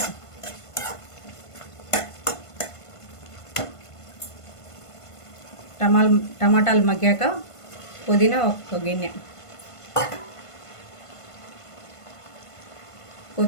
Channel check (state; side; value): late; right; 1.5 ms